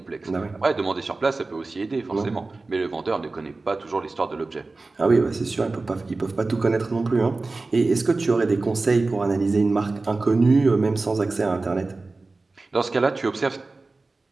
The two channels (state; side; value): quieter; left; 3.5 dB